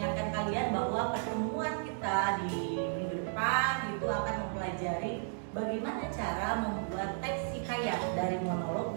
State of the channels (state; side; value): silent; left; digital silence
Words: kalian bahwa pertemuan kita di minggu depan itu akan mempelajari bagaimana cara membuat teks hikayat dari monolog